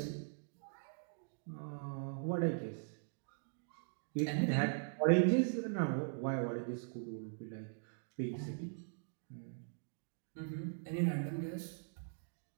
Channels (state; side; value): silent; left; digital silence